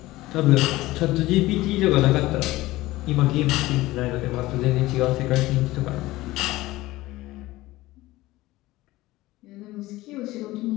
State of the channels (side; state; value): right; quieter; 18.1 dB